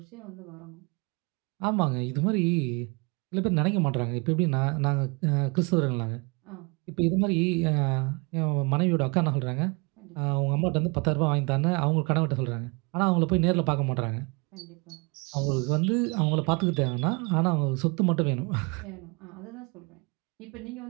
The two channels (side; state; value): left; quieter; 30.5 dB